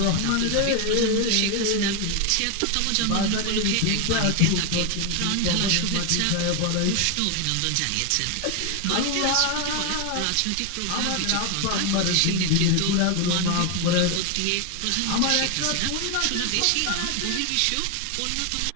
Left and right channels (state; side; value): different; both; correlation 0.01